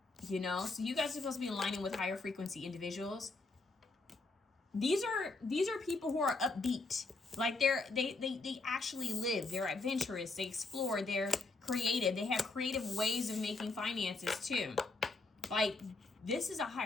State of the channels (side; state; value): right; quieter; 3.5 dB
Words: You know? So you guys are supposed to be aligning with higher frequency individuals. These are people who are upbeat. Like they actually live. They're adventurous. They explore. They're creative. They have creative ways of making finances too. Like this is a